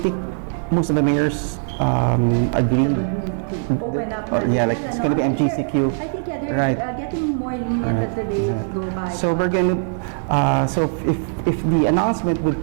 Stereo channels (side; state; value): left; silent; digital silence